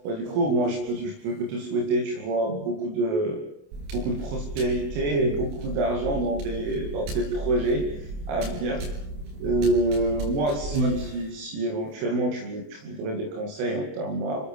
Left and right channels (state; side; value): late; left; 28 ms